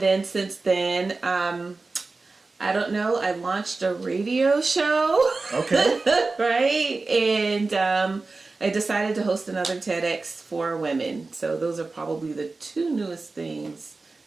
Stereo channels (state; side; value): quieter; left; 3.7 dB